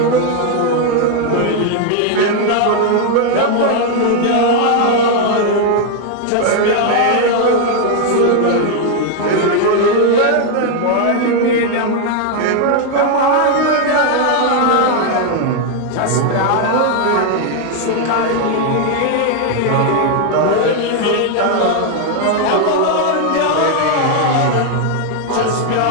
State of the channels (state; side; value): different; both; correlation 0.01